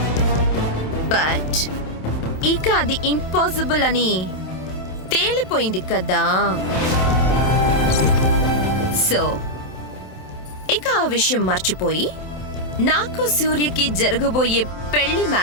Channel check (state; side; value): late; right; 27 ms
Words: బట్ ఇక అది ఇంపాసిబుల్ అని తేలిపోయింది కదా. సో ఇక ఆ విషయం మర్చిపోయి నాకు సూర్యకి జరగబోయే పెళ్లి